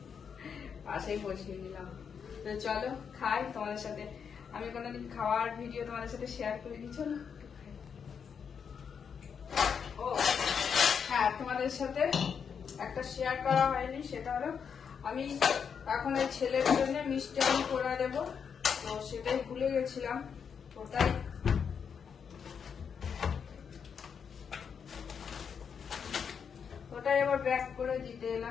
পাশেই বসিয়ে নিলাম। তো চলো খাই। তোমাদের সাথে আমি কোনোদিন খাওয়ার ভিডিও তোমাদের সাথে শেয়ার করিনি। চলো। ও হ্যাঁ, তোমাদের সাথে একটা শেয়ার করা হয়নি, সেটা হলো আমি এখন এই ছেলের জন্য মিষ্টি আলু করে দেবো। তো সেটাই ভুলে গেছিলাম। ওটাই আবার ব্যাক করে দিতে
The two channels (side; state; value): right; quieter; 6.8 dB